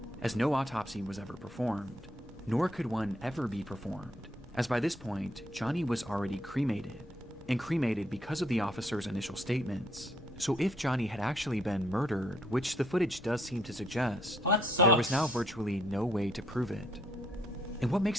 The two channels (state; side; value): normal; both; correlation 0.69